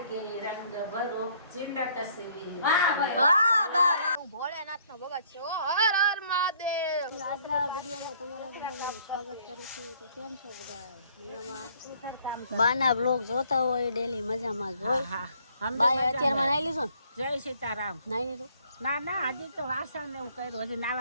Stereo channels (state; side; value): inverted; both; correlation -0.62